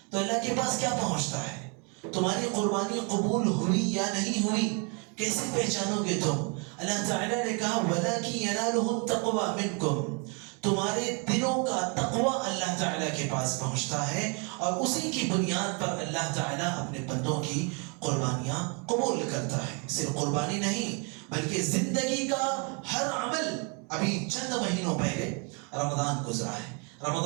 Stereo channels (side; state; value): left; quieter; 34.8 dB